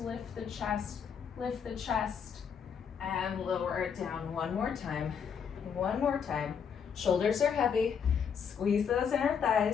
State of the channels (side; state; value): right; quieter; 7.1 dB